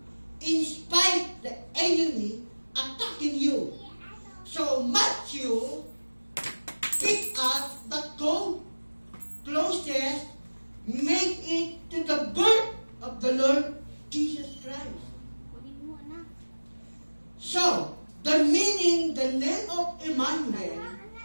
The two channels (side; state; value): both; inverted; correlation -1.00